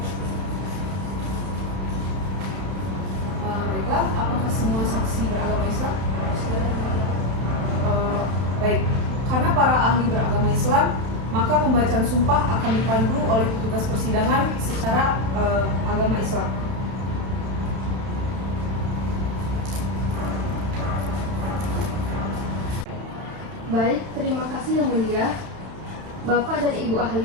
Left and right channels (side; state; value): left; late; 31 ms